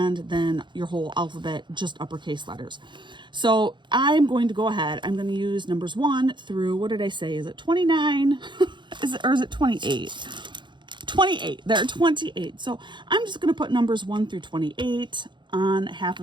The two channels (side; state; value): left; late; 0.23 ms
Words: then your whole alphabet, just uppercase letters. So I'm going to go ahead. I'm going to use numbers 1 through, what did I say? Is it 29? Is it 28? 28. There are 28. So I'm just going to put numbers 1 through 28 on half